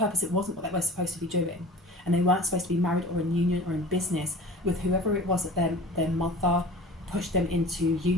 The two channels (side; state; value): both; normal; correlation 0.40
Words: It wasn't what they were supposed to be doing, and they weren't supposed to be married or in union or in business with whoever it was that their mother pushed them into